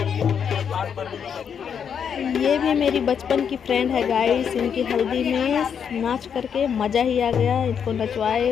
भी मेरी बचपन की फ्रेंड है गाइस। इनकी हल्दी में नाच करके मज़ा ही आ गया। इनको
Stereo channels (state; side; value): quieter; right; 7.5 dB